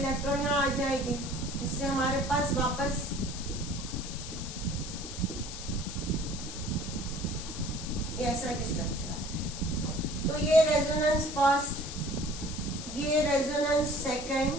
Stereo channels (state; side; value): noise; left; hiss, 9 dB below the sound